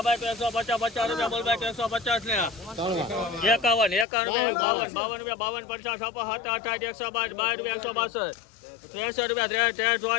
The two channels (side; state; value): right; drops out; at 4.0 s